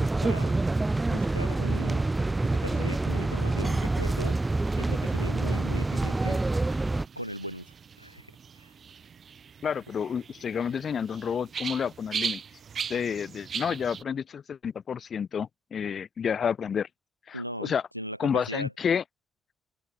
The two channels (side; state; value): both; normal; correlation 0.80